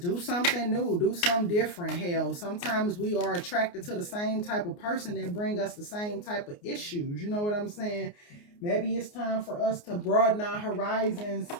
do something new, do something different. Hell, sometimes we are attracted to the same type of person that bring us the same type of issues. You know what I'm saying? Maybe it's time for us to broaden our horizons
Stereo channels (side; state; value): right; late; 29 ms